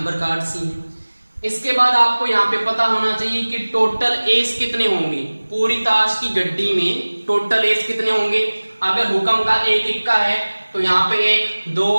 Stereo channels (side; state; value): both; inverted; correlation -1.00